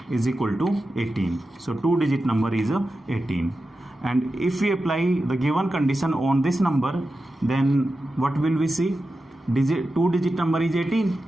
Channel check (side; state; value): both; normal; correlation 0.92